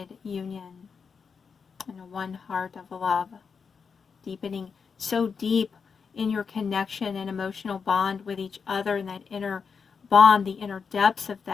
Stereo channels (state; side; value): quieter; right; 5.8 dB